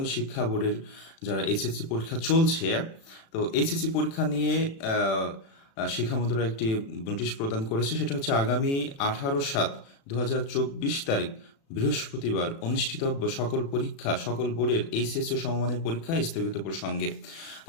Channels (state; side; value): late; right; 36 ms